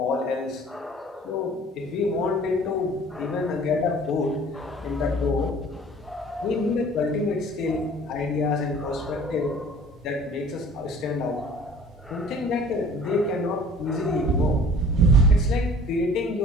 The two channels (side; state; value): both; normal; correlation 0.49